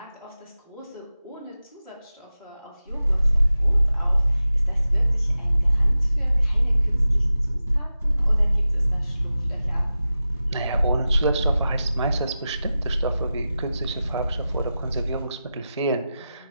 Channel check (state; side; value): inverted; both; correlation -0.94